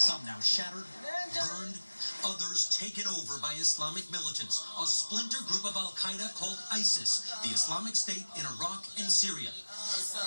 now shattered, burned, others taken over by Islamic militants, a splinter group of Al-Qaeda called ISIS, the Islamic State in Iraq and Syria.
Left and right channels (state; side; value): inverted; both; correlation -1.00